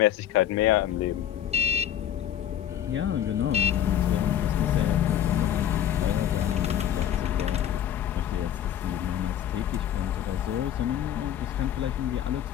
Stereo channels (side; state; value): right; quieter; 10.4 dB